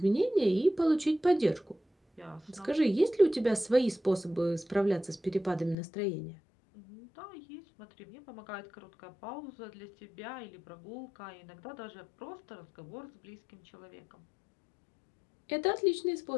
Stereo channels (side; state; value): right; drops out; at 5.8 s